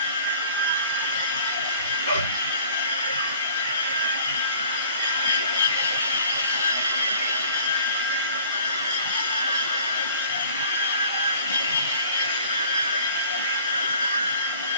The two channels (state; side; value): inverted; both; correlation -0.51